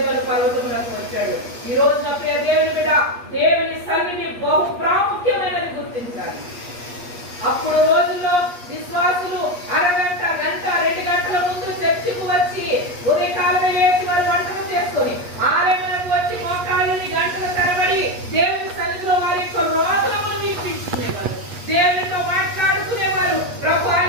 పర్వతమునకు వచ్చాడు. ఈ రోజున ప్రియ దేవుని బిడ్డ, దేవుని సన్నిధి బహు ప్రాముఖ్యమైనది గుర్తించాలి. అప్పుడు రోజుల్లో విశ్వాసులు అరగంట, గంట, 2 గంటల ముందు చర్చికి వచ్చి ఉదయకాలమే లేచి వారు వంటలు చేసుకొని 6 వచ్చి మోకాళ్ళని గంటల తరబడి దేవుని సన్నిధిలో వారి యొక్క రోదనములు వినిపించుకునేవారు, దేవునితో మాట్లాడుకునేవారు. ప్రభు,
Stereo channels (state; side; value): late; left; 8.4 ms